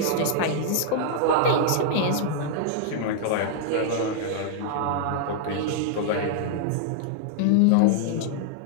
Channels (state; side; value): different; both; correlation -0.01